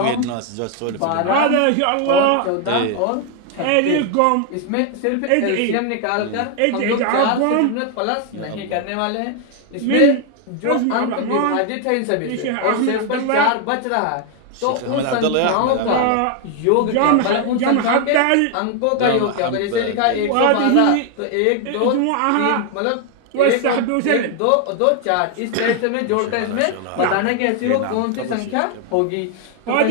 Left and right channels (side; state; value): both; different; correlation 0.00